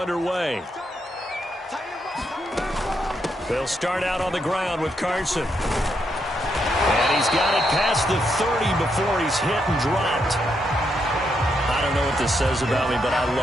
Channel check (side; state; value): both; normal; correlation 0.79